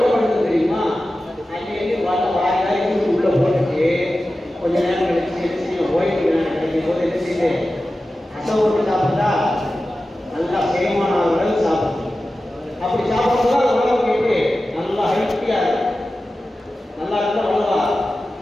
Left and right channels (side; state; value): both; normal; correlation 0.94